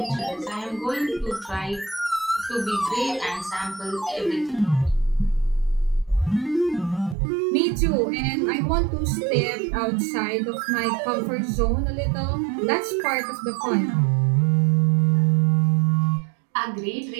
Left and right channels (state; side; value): drops out; left; at 7.2 s